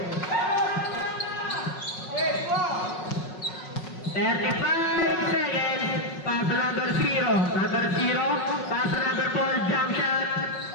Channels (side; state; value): right; late; 5.4 ms